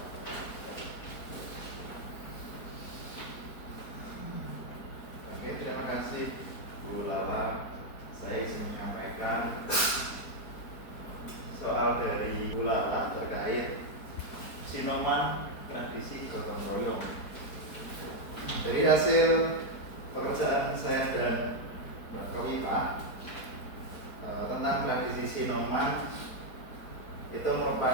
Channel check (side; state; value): right; late; 4.5 ms